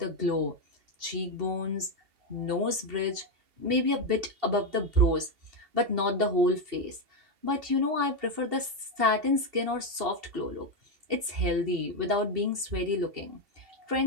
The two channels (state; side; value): late; left; 2.7 ms